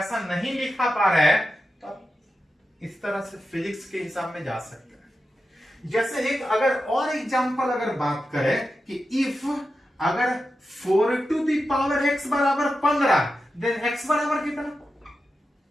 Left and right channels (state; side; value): normal; both; correlation 0.90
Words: नहीं लिखा पा रहे हैं तो आप इस तरह से फिजिक्स के हिसाब में जा सकते हैं। जैसे एक अगर और एग्जांपल अगर बात करें कि इफ अगर 4 टू दी पावर x बराबर 15, देन x बराबर कितना,